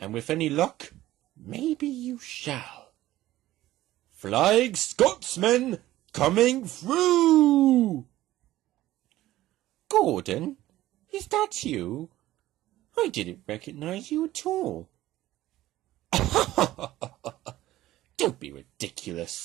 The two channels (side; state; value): left; quieter; 15.3 dB